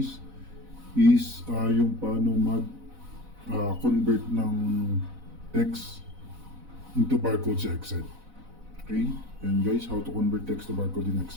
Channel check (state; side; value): late; left; 4.0 ms